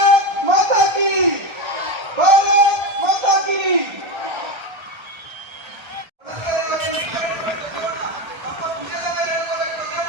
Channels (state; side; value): late; left; 1.3 ms